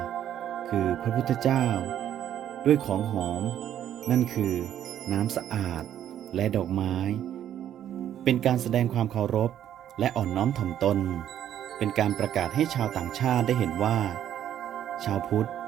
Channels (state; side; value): quieter; left; 10.6 dB